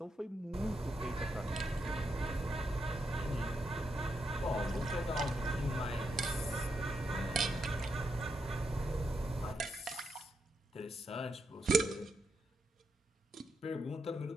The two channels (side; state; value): both; normal; correlation 0.82